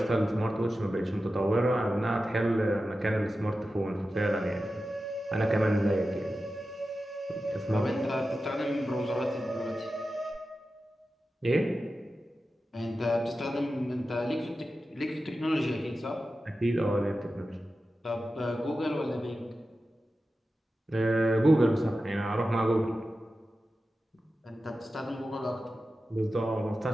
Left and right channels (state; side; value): normal; both; correlation 0.93